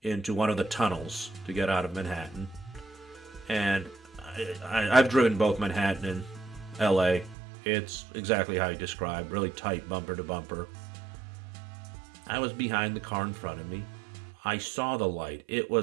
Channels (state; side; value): drops out; left; at 7.4 s